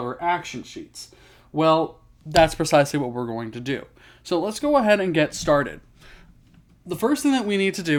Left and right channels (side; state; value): both; identical; correlation 1.00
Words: action sheets. Well, that's precisely what we're going to do. So let's go ahead and get started. The first thing that we need to